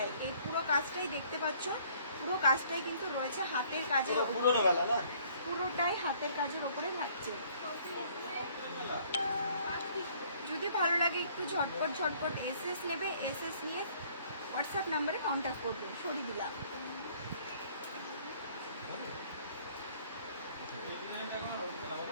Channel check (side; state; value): both; inverted; correlation -0.59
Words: এই পুরো কাজটাই দেখতে পাচ্ছ, পুরো কাজটাই কিন্তু রয়েছে হাতের কাজের ওপরে, পুরোটাই হাতের কাজের ওপরে থাকছে। যদি ভালো লাগে একটু ঝটপট এসএস নেবে, এসএস নিয়ে হোয়াটসঅ্যাপ নাম্বারে কন্ট্যাক্ট করবে। সরিয়ে দিলাম।